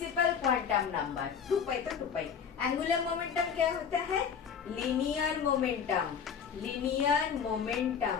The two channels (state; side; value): quieter; right; 7.0 dB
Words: quantum number. 2 तो 2 एंगुलर मोमेंटम क्या होता है? Linear momentum.